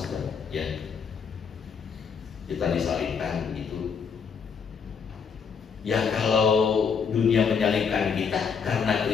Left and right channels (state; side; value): quieter; right; 6.3 dB